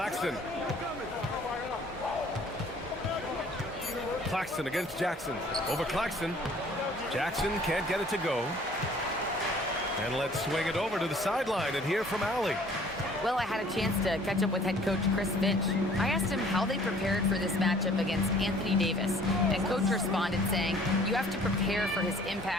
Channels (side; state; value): both; normal; correlation 0.54